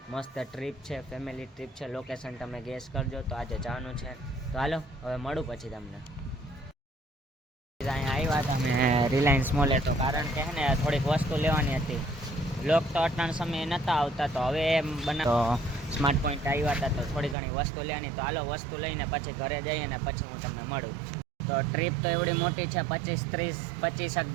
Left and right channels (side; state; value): left; drops out; at 17.4 s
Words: મસ્ત ટ્રીપ છે, ફેમિલી ટ્રીપ છે. લોકેશન તમે ગેસ કરજો. તો આજે જવાનું છે, તો હાલો હવે મળું પછી તમને. અહીંયા આવ્યા હતા અમે રિલાયન્સ મોલે, તો કારણ કે હે ને થોડીક વસ્તુ લેવાની હતી. વ્લોગ તો અટાણ સમયે નહોતા આવતા, તો હવે તો સ્માર્ટ પોઈન્ટ આવ્યા હતા, તો થોડી ઘણી વસ્તુ લેવાની. તો હાલો વસ્તુ લઈને પછી ઘરે જઈએ ને પછી હું તમને મળું. તો ટ્રીપ તો એવડી મોટી છે, 25-30